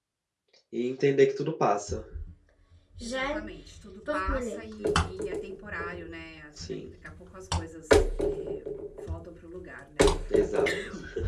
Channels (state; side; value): identical; both; correlation 1.00